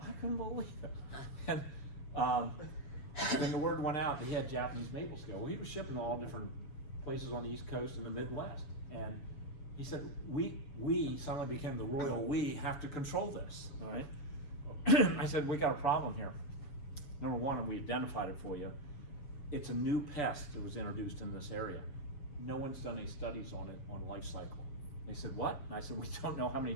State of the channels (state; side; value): late; right; 7.1 ms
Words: I couldn't believe it. And then the word went out that he had Japanese maple scale. Well, he was shipping to all different places on the East Coast and the Midwest. And he said, we suddenly became the royal we, have to control this. All right? I said, we got a problem here. Number one, and we identified it for you, it's a new pest that was introduced in this area. No one's done any studies on it on life cycle. They said, what? And I said, we don't know how many